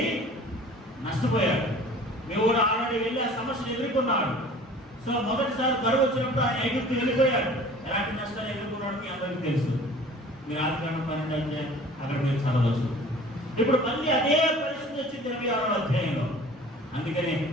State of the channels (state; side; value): normal; both; correlation 0.46